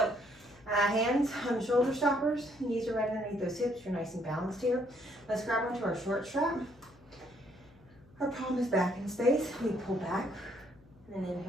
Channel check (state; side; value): noise; left; hum, 26 dB below the sound